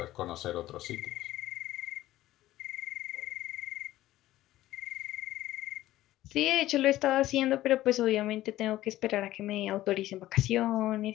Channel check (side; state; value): right; quieter; 15.1 dB